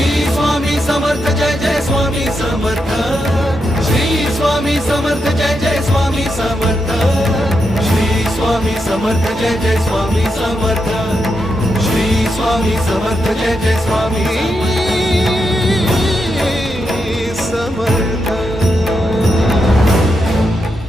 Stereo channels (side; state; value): both; normal; correlation 0.84